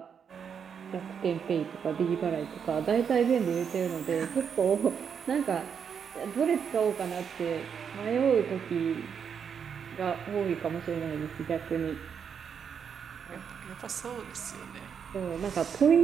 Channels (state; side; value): quieter; left; 7.2 dB